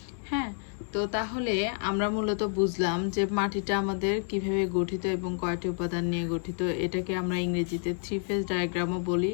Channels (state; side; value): silent; right; 58 dB below the other